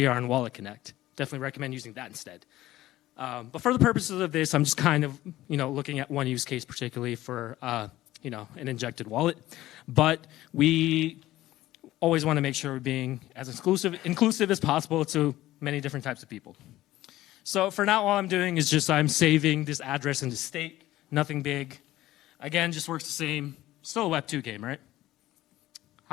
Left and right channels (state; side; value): quieter; right; 15.6 dB